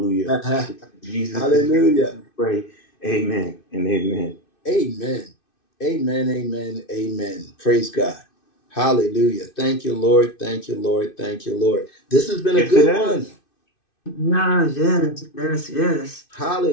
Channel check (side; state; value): right; late; 2.6 ms